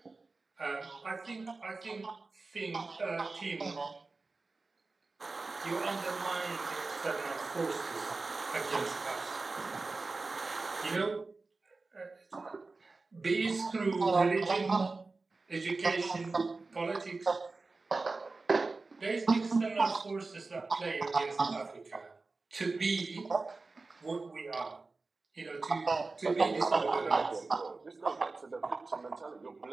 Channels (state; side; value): quieter; left; 3.7 dB